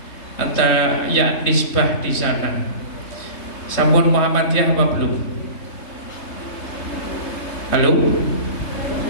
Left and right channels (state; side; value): late; right; 3.4 ms